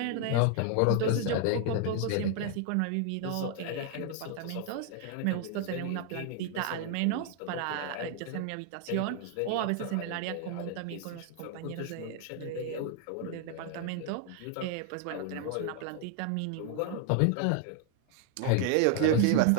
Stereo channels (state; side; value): different; both; correlation 0.00